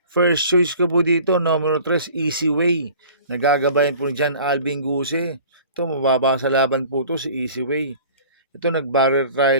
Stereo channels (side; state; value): both; inverted; correlation -0.46